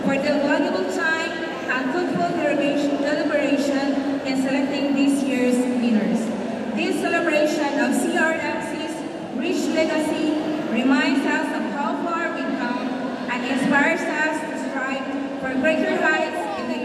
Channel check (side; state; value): both; identical; correlation 1.00